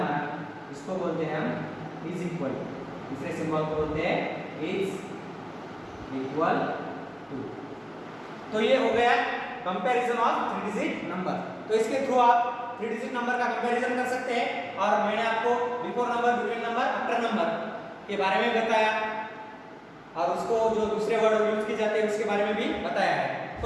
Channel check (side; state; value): both; identical; correlation 1.00